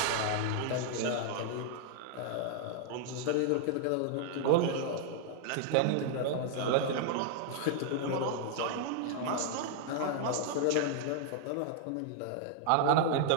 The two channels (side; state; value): both; different; correlation 0.00